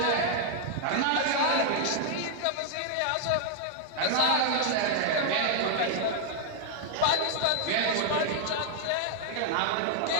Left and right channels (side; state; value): both; different; correlation 0.00